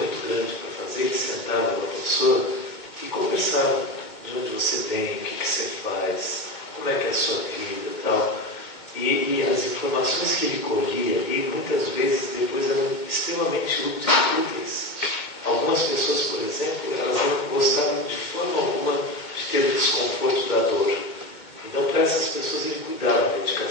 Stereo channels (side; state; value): right; late; 2.2 ms